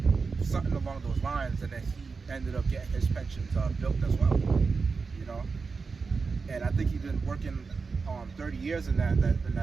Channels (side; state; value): left; quieter; 4.7 dB